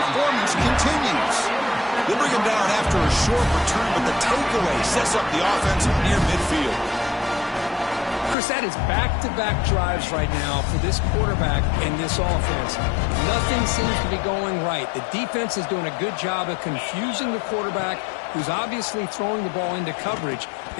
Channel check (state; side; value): drops out; right; at 8.3 s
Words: continues. They bring him down after a short return, but the takeaway sets up the offense near midfield. Chris, that is back-to-back drives right now for this quarterback and this offense. Nothing seems to be going right. The defense is doing a good job of confusing the quarterback, who's obviously throwing the ball into coverage.